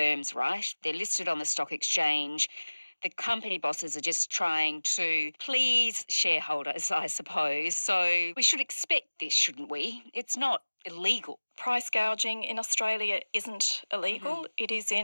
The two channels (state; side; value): inverted; both; correlation -1.00